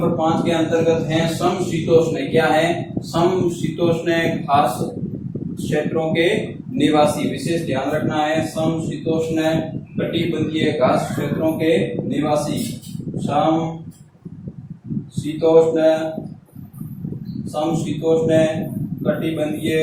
5 के अंतर्गत हैं समशीतोष्ण। क्या है? समशीतोष्ण घास क्षेत्रों के निवासी। विशेष ध्यान रखना है समशीतोष्ण कटिबंधीय घास क्षेत्रों के निवासी। समशीतोष्ण कटिबंधीय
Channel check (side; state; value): both; identical; correlation 1.00